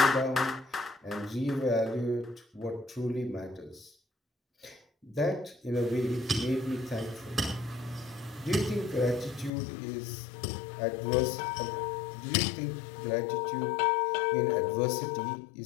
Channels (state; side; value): drops out; right; at 9.5 s